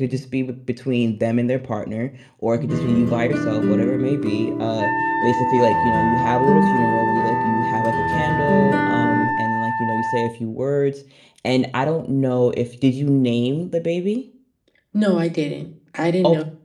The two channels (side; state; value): both; identical; correlation 1.00